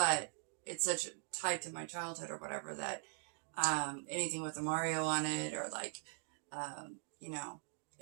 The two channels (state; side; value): silent; left; 50 dB below the other